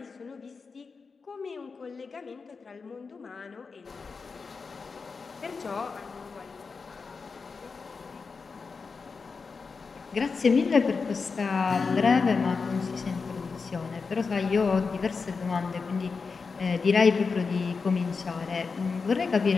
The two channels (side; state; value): right; quieter; 4.8 dB